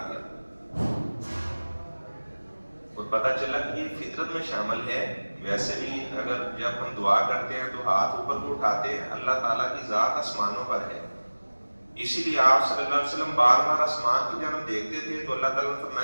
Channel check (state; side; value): inverted; both; correlation -1.00